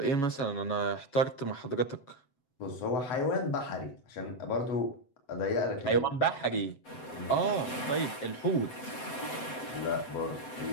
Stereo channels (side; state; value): right; late; 7.9 ms